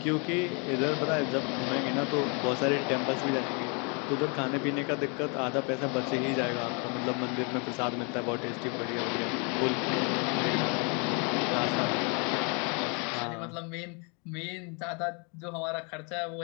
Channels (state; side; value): quieter; right; 34.8 dB